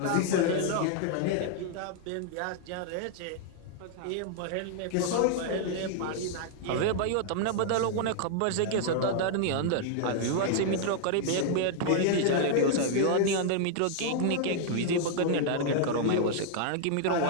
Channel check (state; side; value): different; both; correlation 0.00